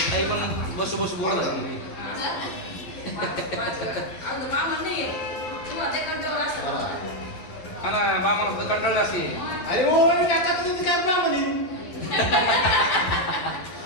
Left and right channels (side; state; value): right; late; 12 ms